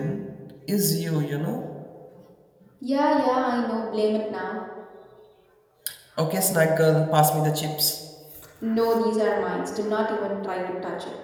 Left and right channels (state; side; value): identical; both; correlation 1.00